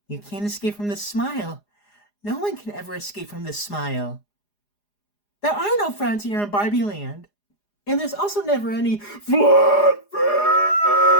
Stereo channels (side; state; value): right; late; 4.9 ms